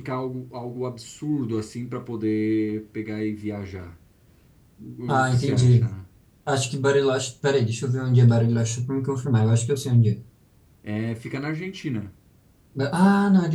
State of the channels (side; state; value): both; identical; correlation 1.00